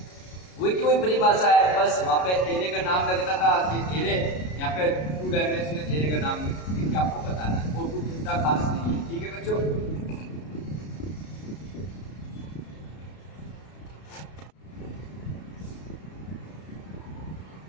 वही की वही परिभाषा है, बस वहाँ पे एरे का नाम लगता था कि एरे, यहाँ पे 2 डायमेंशनल एरे का नाम लिख के आपको बताना है, और कुछ इतना खास नहीं है। ठीक है बच्चों,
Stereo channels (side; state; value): right; late; 33 ms